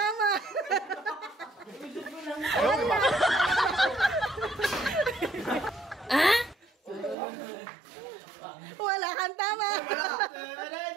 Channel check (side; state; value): left; drops out; at 7.2 s